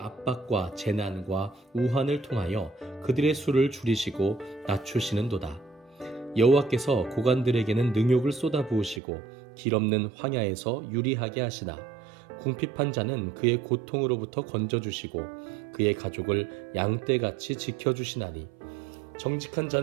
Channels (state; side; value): drops out; left; at 9.0 s